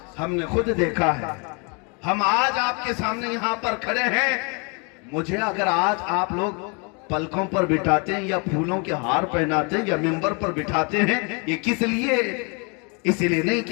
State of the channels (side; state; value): right; quieter; 33.7 dB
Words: ہم نے خود دیکھا ہے ہم آج آپ کے سامنے یہاں پر کھڑے ہیں. مجھے اگر آج آپ لوگ پلکوں پر بٹھاتے ہیں یا پھولوں کے ہار پہناتے ہیں یا ممبر پر بٹھاتے ہیں، یہ کس لیے؟ اس لیے نہیں